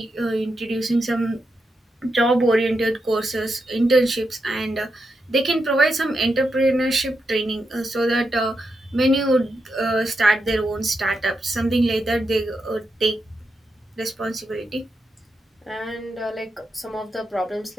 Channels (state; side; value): normal; both; correlation 0.85